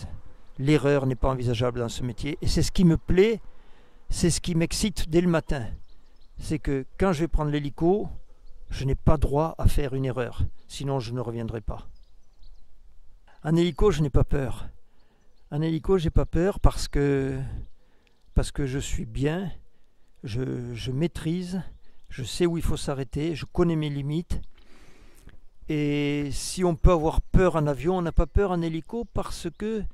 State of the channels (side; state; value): both; identical; correlation 1.00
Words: L'erreur n'est pas envisageable dans ce métier. Et c'est ce qui me plaît, c'est ce qui m'excite dès le matin. C'est que quand je vais prendre l'hélico, je n'ai pas droit à faire une erreur. Sinon, je ne reviendrai pas. En hélico, je n'ai pas peur. En hélico, j'ai pas peur parce que je suis bien, je maîtrise, je sais où il faut s'arrêter, je connais mes limites. Et si on peut avoir peur en avion, on n'a pas peur en hélico parce que